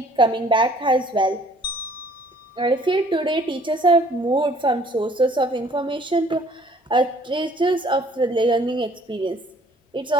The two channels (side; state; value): both; normal; correlation 0.58